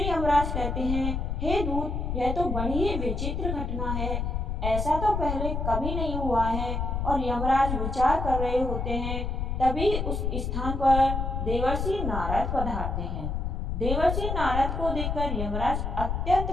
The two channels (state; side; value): noise; left; rumble, 2 dB below the sound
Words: यमराज कहते हैं, हे दूत, यह तो बड़ी ही विचित्र घटना है। ऐसा तो पहले कभी नहीं हुआ है। और यमराज विचार कर रहे होते हैं, तभी उस स्थान पर देवर्षि नारद पधारते हैं। देवर्षि नारद को देखकर यमराज